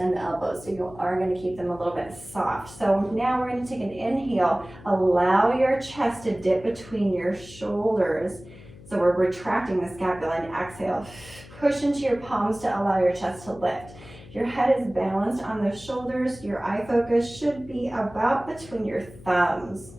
the elbows, so you are going to keep them a little bit soft. So now we're going to take an inhale. Allow your chest to dip between your shoulders. So we're retracting the scapula, and exhale. Push into your palms to allow your chest to lift. Your head is balanced on the shoulders. Your eye focus should be about between your thumbs.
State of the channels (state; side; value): noise; left; hum, 19 dB below the sound